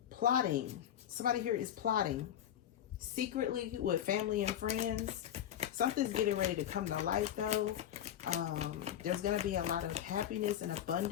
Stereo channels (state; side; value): quieter; right; 10.6 dB